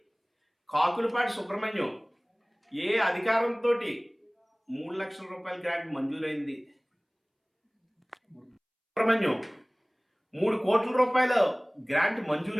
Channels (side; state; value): both; identical; correlation 1.00